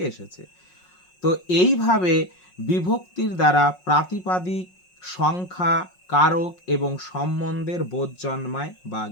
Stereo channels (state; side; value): late; right; 5.5 ms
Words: এসেছে। তো এইভাবে বিভক্তির দ্বারা প্রাতিপাদিক, সংখ্যা, কারক এবং সম্বন্ধের বোধ জন্মায় বা